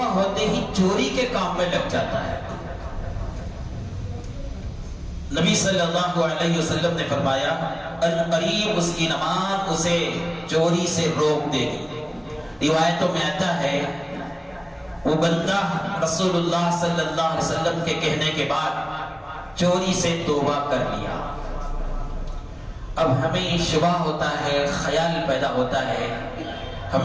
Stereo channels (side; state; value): both; identical; correlation 1.00